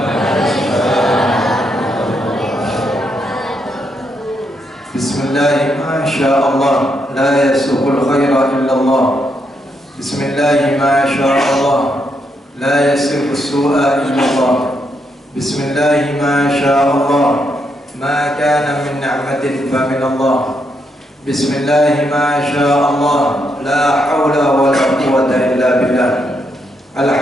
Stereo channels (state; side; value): normal; both; correlation 0.79